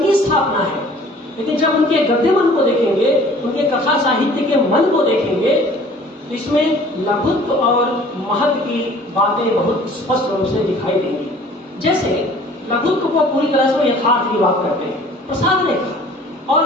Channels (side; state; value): both; normal; correlation 0.51